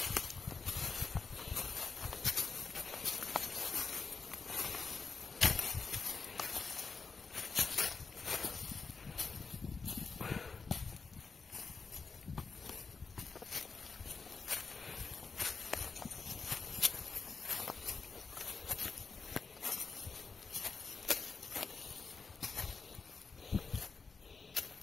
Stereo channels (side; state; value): right; quieter; 4.8 dB